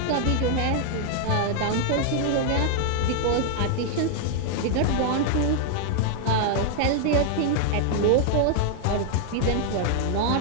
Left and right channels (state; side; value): different; both; correlation 0.00